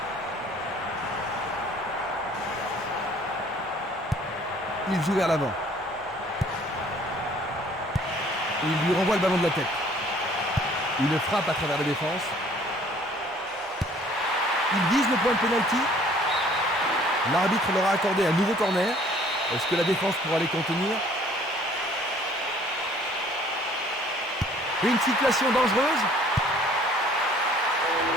Il joue vers l'avant. Il lui renvoie le ballon de la tête. Il frappe à travers la défense. Il vise le point de pénalty. L'arbitre leur a accordé un nouveau corner. Est-ce que la défense pourra les contenir? Une situation dangereuse.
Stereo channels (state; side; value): normal; both; correlation 0.56